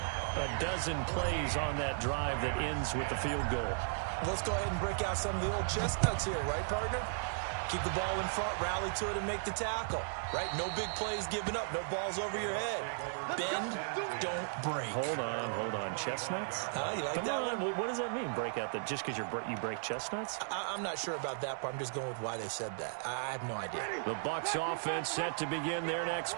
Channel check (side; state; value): left; silent; digital silence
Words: dozen plays on that drive that ends with the field goal. Let's go ahead and break out some of the old chestnuts here, right, partner? Keep the ball in front, rally to it, and make the tackle. Right? No big plays given up. No balls over your head. Bend, don't break. Hold on. Chestnuts? You like Come that on. one? What does that mean, break out? Just because you break chestnuts? I'm not sure about that, but I'm just going with why they said that. I have no idea. The Bucs offense set to begin their next